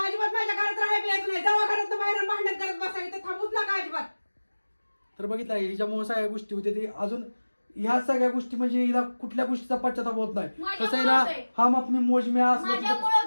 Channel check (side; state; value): both; inverted; correlation -1.00